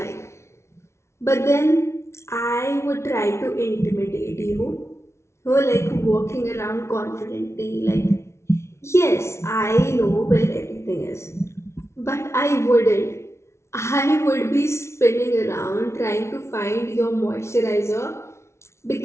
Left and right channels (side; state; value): right; late; 0.13 ms